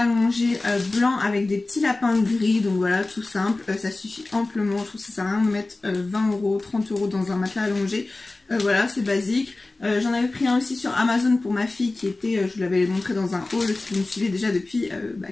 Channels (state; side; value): quieter; right; 3.1 dB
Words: allongé blanc avec des petits lapins gris, donc voilà, tout simple, ça suffit amplement. Je trouve que ça sert à rien de mettre 20 €, 30 € dans un matelas allongé. Voilà, c'est basique. J'en avais pris un aussi sur Amazon pour ma fille qui était, je vous l'avais montré dans un haul si vous me suivez déjà depuis